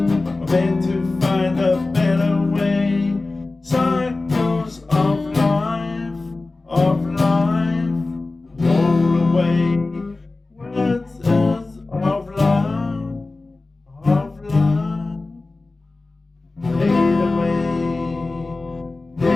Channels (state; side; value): quieter; right; 3.3 dB